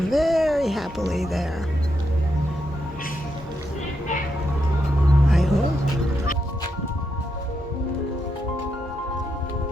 very happily there. I hope.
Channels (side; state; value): both; normal; correlation 0.82